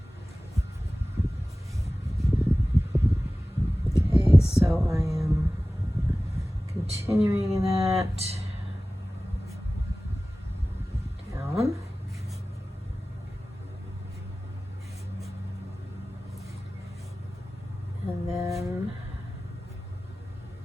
Okay, so I am continuing that down. And then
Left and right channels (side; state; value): both; normal; correlation 0.97